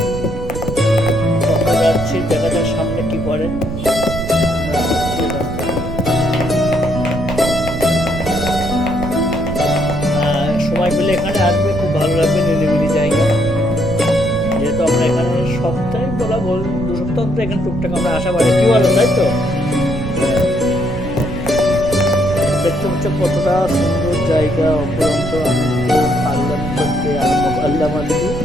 যাচ্ছি, দেখা যাক সামনে কি পড়ে। সময় পেলে এখানে আসবে, খুব ভালো লাগবে, নিরিবিলি জায়গা। যেহেতু আমরা এখানে সপ্তাহে বলা বল 2 সপ্তাহ অন্তর এখানে টুকটাক আমরা আসা পারি, কি বলো, তাই তো? দেখতে পাচ্ছ কতটা সুন্দর জায়গা, অপরন্ত আল্লাহ করতে আল্লাহ মালি।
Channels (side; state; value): right; noise; rumble, 7 dB below the sound